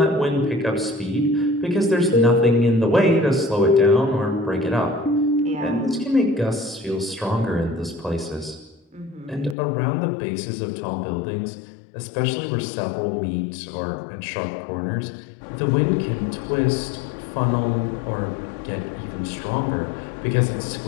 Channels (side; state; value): right; drops out; at 9.6 s